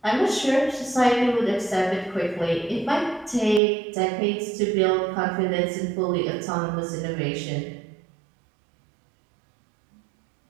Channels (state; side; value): drops out; left; at 3.6 s